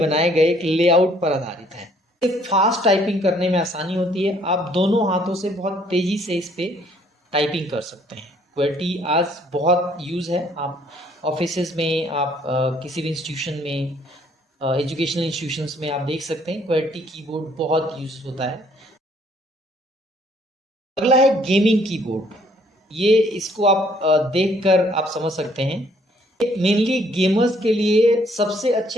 गए एक लेआउट पर आधारित है। फास्ट टाइपिंग करने में आसानी होती है, आप दोनों हाथों से बहुत तेज़ी से इस पर टाइपिंग कर सकते हैं। QWERTY आज बहुत यूज़ है, आप ऑफिसेज में, आप किसी भी इंस्टीट्यूशन में, एजुकेशनल इंस्टीट्यूशंस में आप देख सकते हैं QWERTY कीबोर्ड बहुत यूज होता है। अगला है गेमिंग कीबोर्ड। ये इसको आप देखकर आप समझ सकते हैं, मेनली गेमर्स के लिए सबसे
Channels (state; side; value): normal; both; correlation 0.63